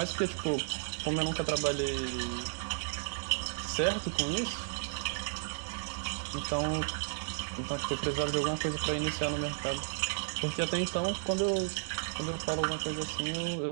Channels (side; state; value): left; silent; digital silence